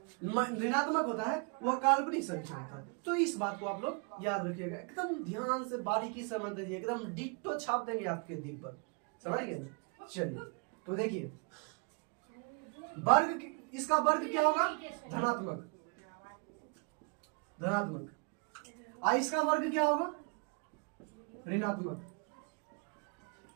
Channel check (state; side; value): quieter; left; 35.3 dB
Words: ऋणात्मक होता है वह काल्पनिक संख्या होता है। तो इस बात को आप लोग याद रखिएगा, एकदम ध्यान से बारीकी से समझ लीजिए, एकदम डिट्टो छाप देंगे आपके दिल पर, समझ गए ना। चलिए तो देखिए वर्ग, इसका वर्ग क्या होगा? धनात्मक, धनात्मक। इसका वर्ग क्या होगा? ऋणात्मक,